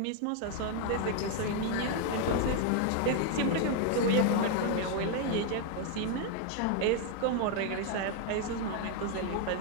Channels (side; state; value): both; different; correlation 0.00